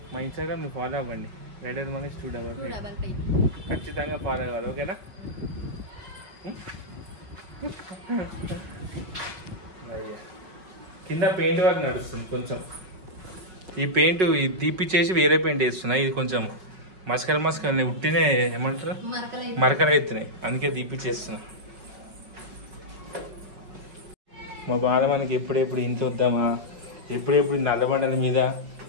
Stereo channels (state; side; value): late; left; 5.4 ms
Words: మా ఇన్స్టాగ్రామ్ మీరు ఫాలో అవ్వండి, రైడర్ మనకి స్టూడెంట్ ఖచ్చితంగా ఫాలో అవ్వాలి, ఓకేనా? కింద పెయింట్ వర్క్ నడుస్తుంది కొంచెం. ఈ పెయింట్ తీపిచ్చేసి వేరే పెయింట్ వేస్తున్నాయి. ఇది కొంచెం మస్కలు ఉట్టినే ఏమంటారు మరకలు అవుతున్నాయి, అందుకే తీపిచ్చేస్తున్నా. మా బాధ మనకి ఎప్పుడెప్పుడు ఇంత వద్దామా, ఎప్పుడెప్పుడు నల్లబండల మీద